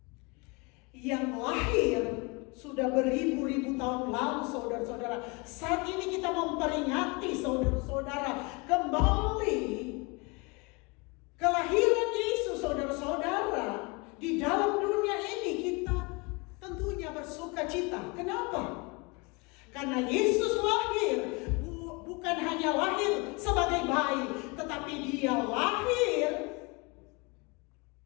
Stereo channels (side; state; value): right; quieter; 28.4 dB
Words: yang lahir sudah beribu-ribu tahun lalu, saudara-saudara. Saat ini kita memperingati, saudara-saudara, kembali kelahiran Yesus, saudara-saudara. Di dalam dunia ini kita tentunya bersukacita. Kenapa? Karena Yesus lahir bukan hanya lahir sebagai bayi, tetapi dia lahir